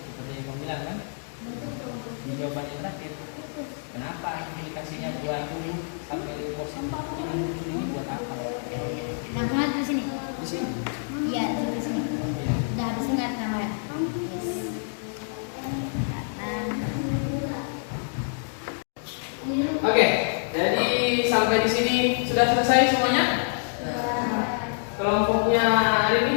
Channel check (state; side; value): silent; right; digital silence